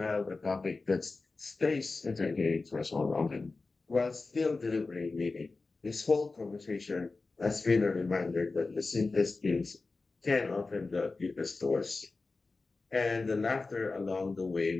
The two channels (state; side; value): quieter; right; 3.8 dB